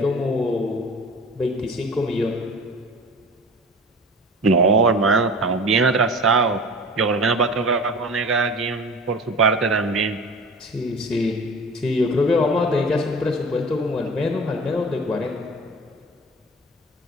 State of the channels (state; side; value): normal; both; correlation 0.38